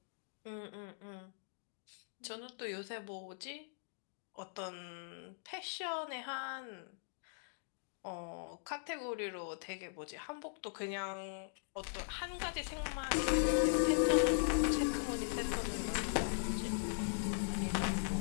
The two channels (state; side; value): silent; right; digital silence